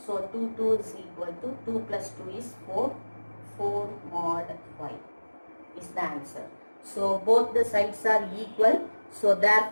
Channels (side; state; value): both; inverted; correlation -1.00